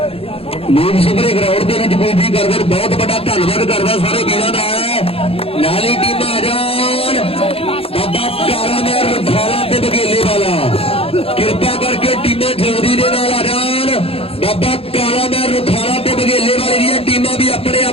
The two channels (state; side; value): late; right; 0.28 ms